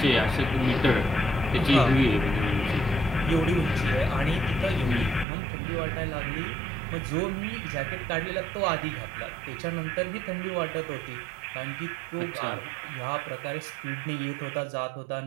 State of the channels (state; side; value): drops out; left; at 5.2 s